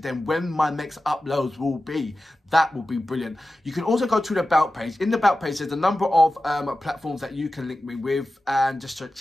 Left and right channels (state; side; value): normal; both; correlation 0.94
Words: when my next uploads will be. That will be brilliant. You can also go to the About page. In the About page, there's a number of platforms that you can link me with, and just to